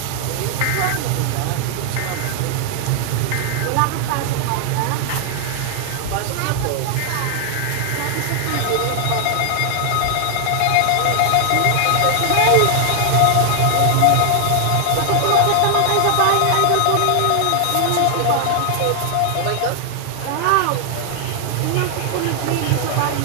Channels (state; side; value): different; both; correlation 0.00